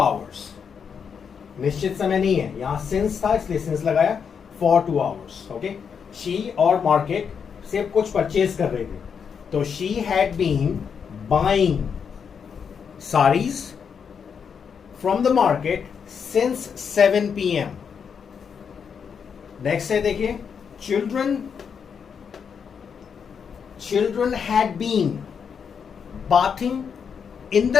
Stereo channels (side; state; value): right; quieter; 6.8 dB